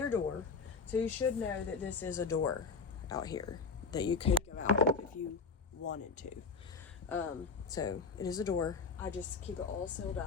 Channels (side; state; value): right; quieter; 4.9 dB